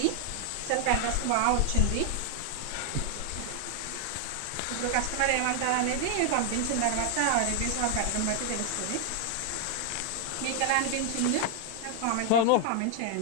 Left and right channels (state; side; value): different; both; correlation 0.00